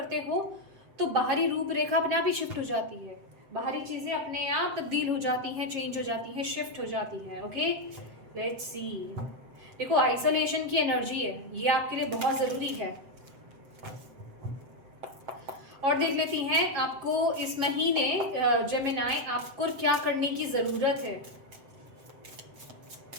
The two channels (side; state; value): left; late; 7.8 ms